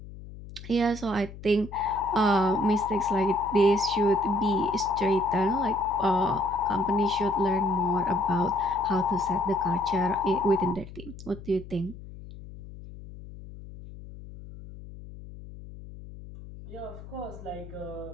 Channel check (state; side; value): noise; left; hum, 15 dB below the sound